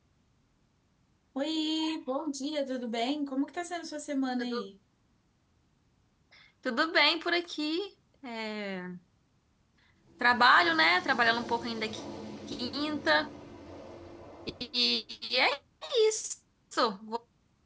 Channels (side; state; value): both; identical; correlation 1.00